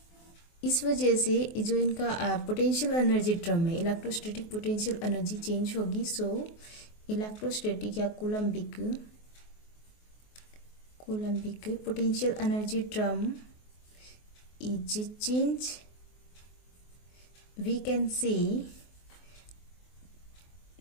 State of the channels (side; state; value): right; late; 24 ms